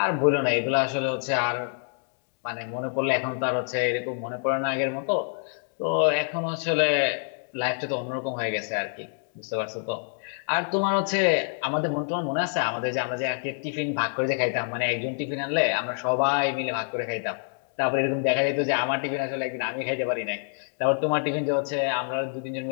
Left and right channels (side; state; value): right; silent; 60 dB below the other